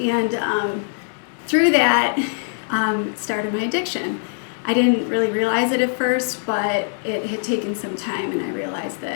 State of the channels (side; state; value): right; silent; digital silence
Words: through that, started my addiction. I didn't really realize it at first, but it had taken some time, and I realized